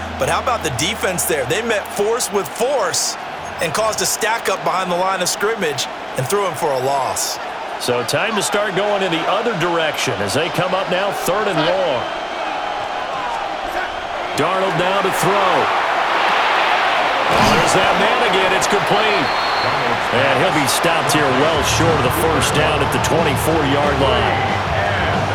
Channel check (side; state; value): both; identical; correlation 1.00